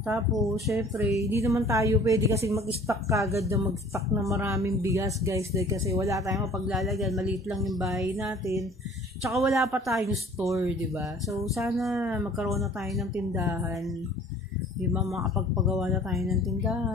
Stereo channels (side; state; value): both; normal; correlation 0.51